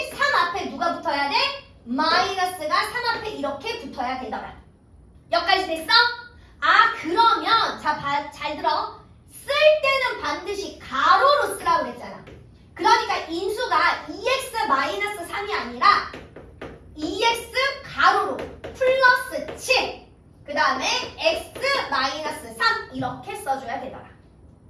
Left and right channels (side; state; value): both; identical; correlation 1.00